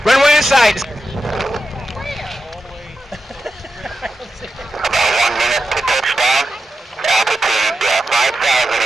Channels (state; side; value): normal; both; correlation 0.89